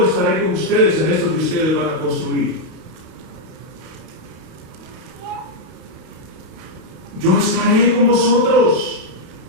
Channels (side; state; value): left; late; 31 ms